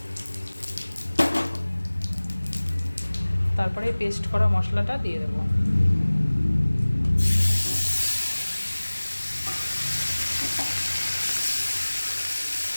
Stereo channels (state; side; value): inverted; both; correlation -1.00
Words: তারপরে পেস্ট করা মশলাটা দিয়ে দেব।